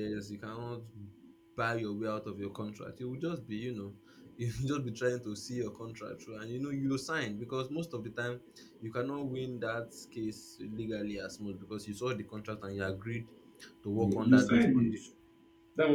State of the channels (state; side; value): identical; both; correlation 1.00